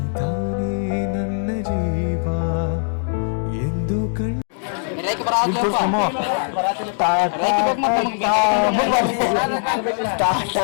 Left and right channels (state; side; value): silent; right; digital silence